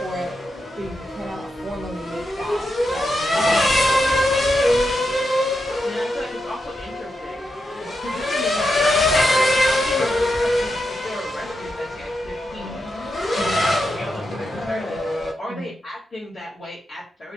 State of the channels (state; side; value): normal; both; correlation 0.86